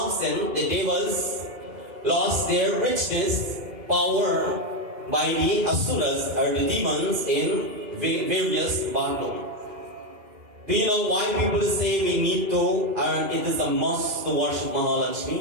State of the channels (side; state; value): left; late; 2.0 ms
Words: absent, the devas lost their richness, power by the asuras or the demons in various battles. Do you know why people say we need to, and it is a must to worship